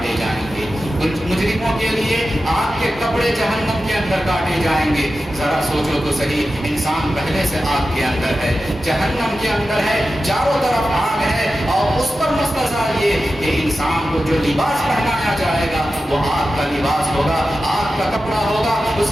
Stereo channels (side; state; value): both; normal; correlation 0.92